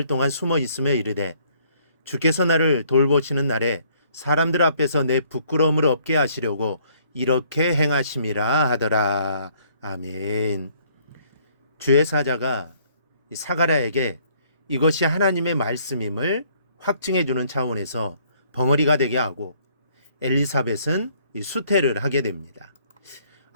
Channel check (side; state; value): both; inverted; correlation -0.63